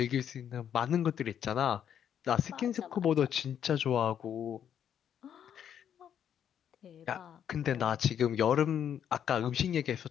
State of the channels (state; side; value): quieter; right; 9.1 dB